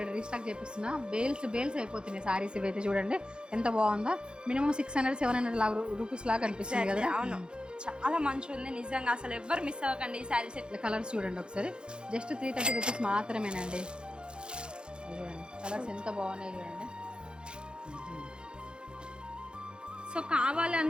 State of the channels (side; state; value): left; late; 0.051 ms